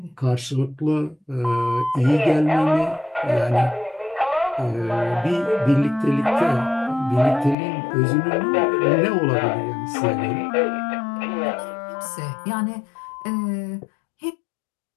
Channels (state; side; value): drops out; right; at 7.6 s